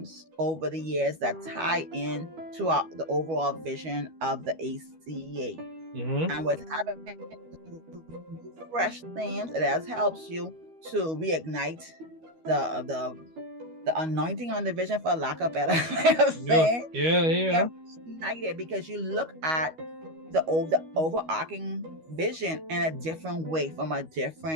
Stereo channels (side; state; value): left; late; 12 ms